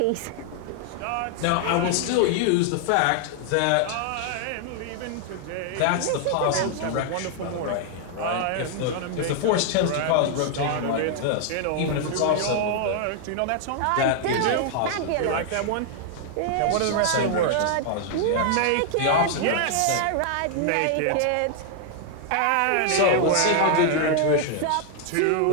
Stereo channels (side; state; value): both; different; correlation 0.00